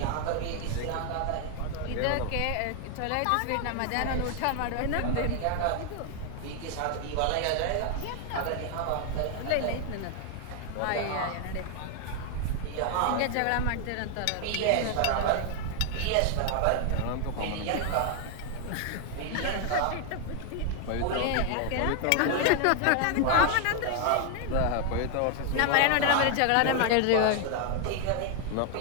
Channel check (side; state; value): both; different; correlation 0.00